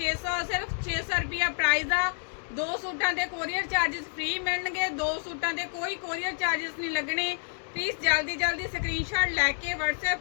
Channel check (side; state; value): right; silent; 59 dB below the other